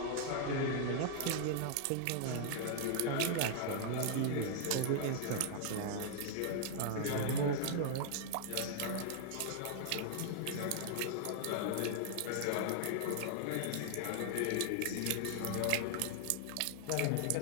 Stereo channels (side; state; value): both; different; correlation -0.01